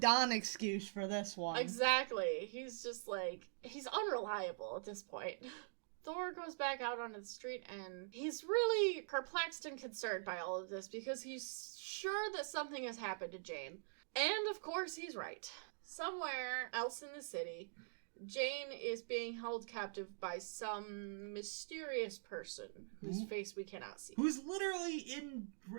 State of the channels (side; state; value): left; silent; digital silence